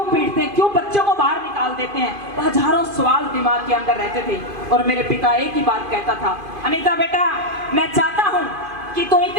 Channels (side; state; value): left; late; 2.5 ms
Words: पीटते हैं, क्यों बच्चों को बाहर निकाल देते हैं? हजारों सवाल दिमाग के अंदर रहते थे। और मेरे पिता एक ही बात कहता था, अनीता बेटा मैं चाहता हूँ कि तू